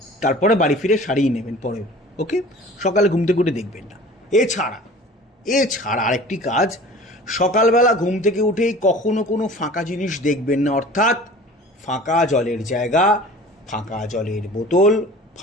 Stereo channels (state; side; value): normal; both; correlation 0.43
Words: তারপরে বাড়ি ফিরে সারিয়ে নেবেন পরে, ওকে? সকালে ঘুম থেকে উঠে দেখবেন না। এছাড়া আরেকটি কাজ, সকালবেলা ঘুম থেকে উঠেই কখনো কোনো ফাঁকা জিনিস দেখবেন না, অর্থাৎ ফাঁকা জলের জায়গা, ফাঁকা জলের বোতল,